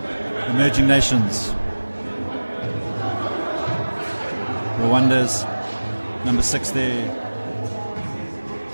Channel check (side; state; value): both; inverted; correlation -1.00